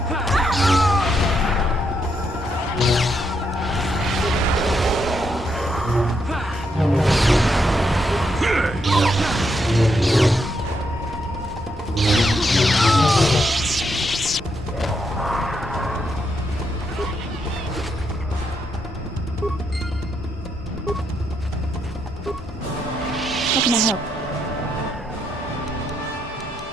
How can I help?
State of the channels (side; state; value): both; normal; correlation 0.79